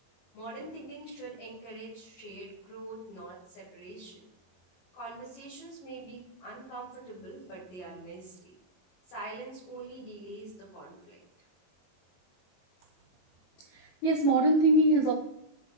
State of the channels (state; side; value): late; right; 22 ms